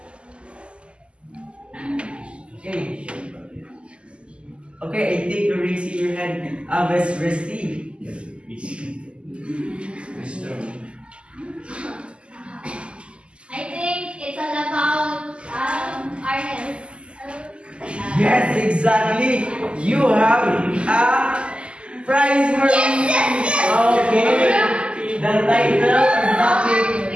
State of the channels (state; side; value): late; left; 0.053 ms